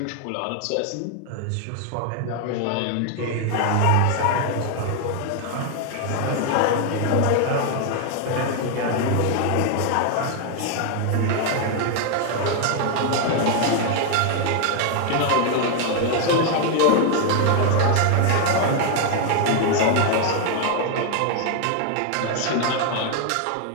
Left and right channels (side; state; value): both; different; correlation 0.00